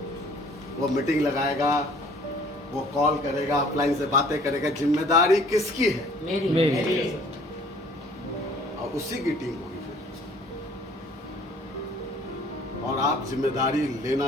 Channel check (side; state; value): both; normal; correlation 0.54